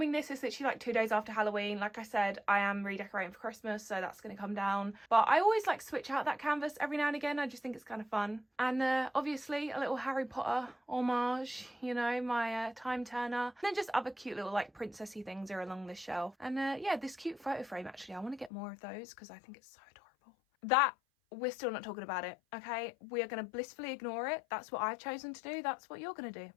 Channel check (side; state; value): right; drops out; at 18.5 s